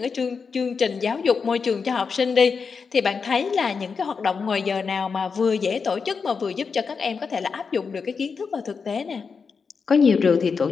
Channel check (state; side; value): quieter; right; 5.4 dB